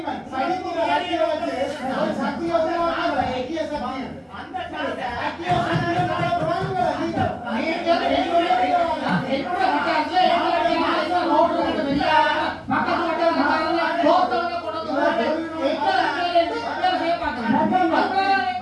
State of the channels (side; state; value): both; identical; correlation 1.00